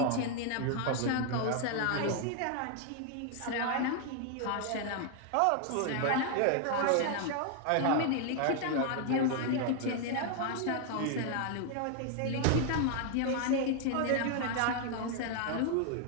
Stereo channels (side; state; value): both; different; correlation 0.00